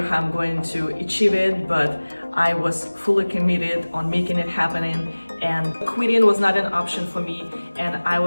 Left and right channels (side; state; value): both; inverted; correlation -1.00